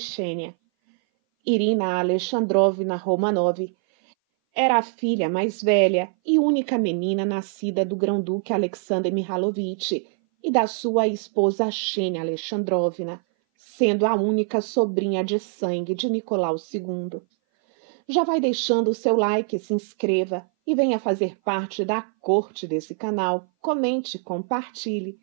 Xênia. Irina Alexandrovna Romanov era a filha mais velha e única menina nascida do grão-duque Alexander Mihalovich e da sua esposa Xenia Alexandrovna, sendo a única sobrinha de sangue de Nicolau II. Já vai deixando o seu like, se inscreva e venha fazer parte da corte desse canal. Comente, compartilhe.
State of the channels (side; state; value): left; silent; 59 dB below the other